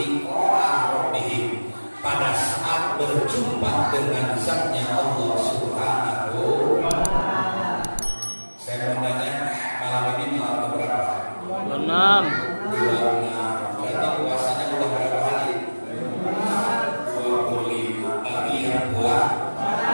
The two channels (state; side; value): inverted; both; correlation -1.00